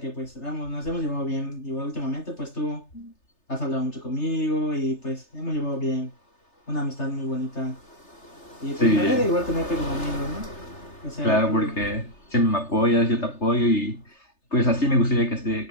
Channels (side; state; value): right; late; 3.3 ms